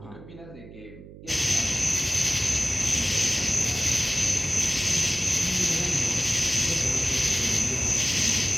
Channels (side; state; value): right; noise; hum, 17 dB below the sound